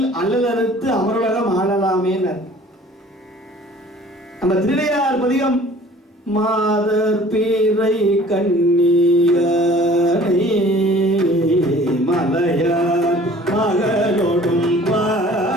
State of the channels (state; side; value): normal; both; correlation 0.50